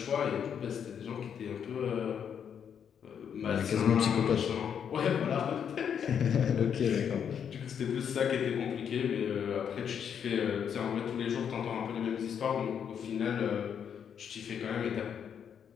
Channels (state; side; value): quieter; right; 8.0 dB